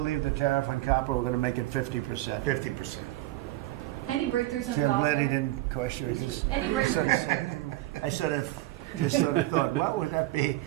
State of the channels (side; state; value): left; quieter; 17.2 dB